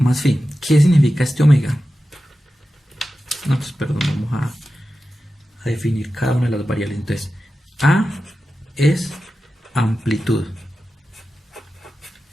phi. ¿Qué significa este omega? No, pues perdón, vamos a definir cada una de las variables. Entonces, A es amplitud.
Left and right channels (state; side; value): normal; both; correlation 0.93